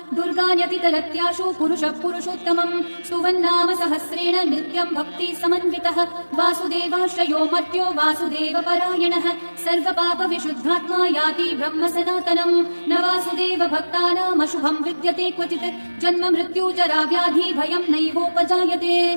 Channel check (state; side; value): inverted; both; correlation -1.00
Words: दुर्गान्यतितरत्याशु पुरुषः पुरुषोत्तमम् स्तुवन्नाम सहस्रेण नित्यं भक्ति समन्वितः वासुदेवाश्रयो मर्त्यो वासुदेवपरायणः सर्वपापविशुद्धात्मा याति ब्रह्म सनातनम् न वासुदेव भक्तानामशुभं विद्यते क्वचित् जन्म मृत्यु जरा व्याधि भयं नैवोपजायते